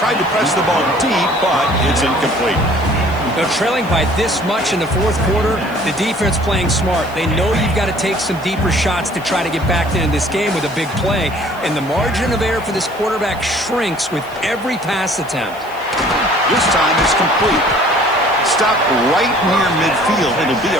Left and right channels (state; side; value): noise; right; hiss, 23 dB below the sound